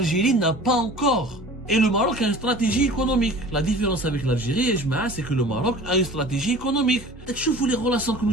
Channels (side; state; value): both; normal; correlation 0.42